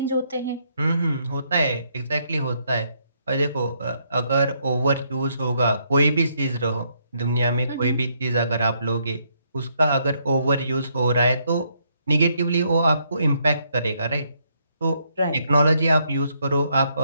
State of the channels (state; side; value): inverted; both; correlation -0.73